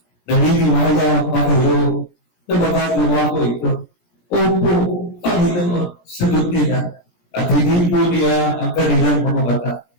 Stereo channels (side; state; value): right; late; 17 ms